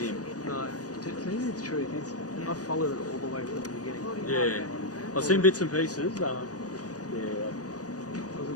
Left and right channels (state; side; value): late; right; 0.67 ms